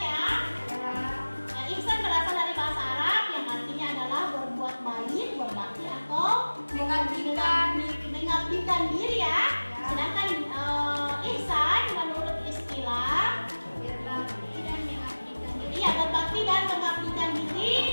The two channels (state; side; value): inverted; both; correlation -1.00